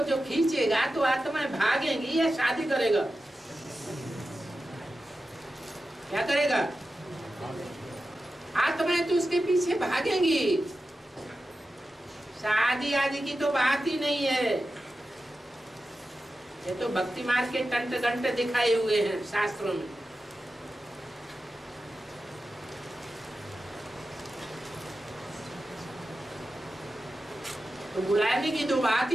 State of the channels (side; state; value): both; normal; correlation 0.92